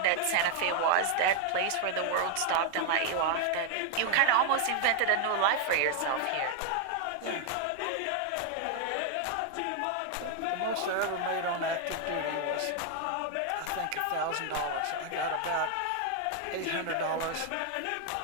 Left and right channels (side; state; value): both; different; correlation 0.00